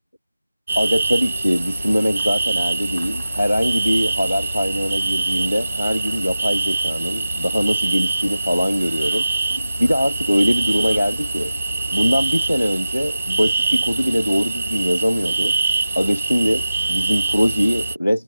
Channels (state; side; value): inverted; both; correlation -0.94